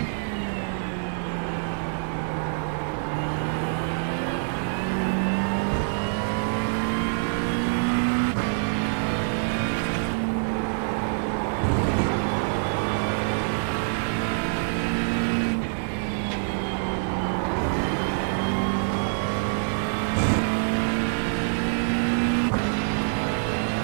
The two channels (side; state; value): left; silent; digital silence